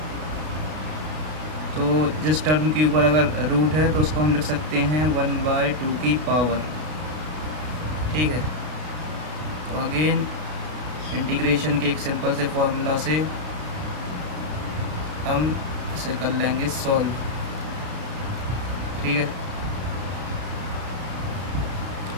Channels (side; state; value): left; late; 33 ms